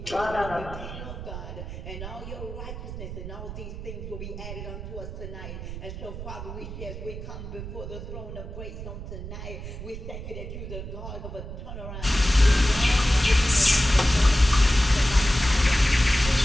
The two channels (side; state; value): right; noise; rumble, 9 dB below the sound